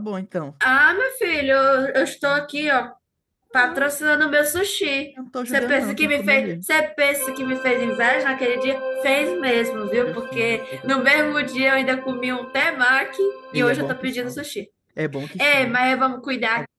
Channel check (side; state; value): both; identical; correlation 1.00